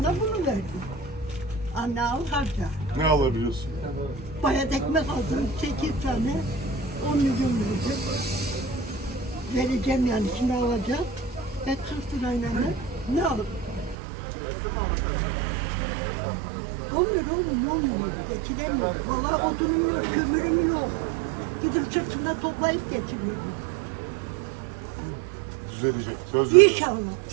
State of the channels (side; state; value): left; drops out; at 14.0 s